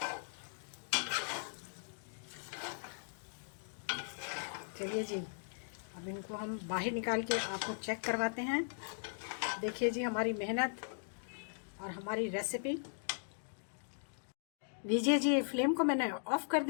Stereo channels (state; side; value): silent; right; digital silence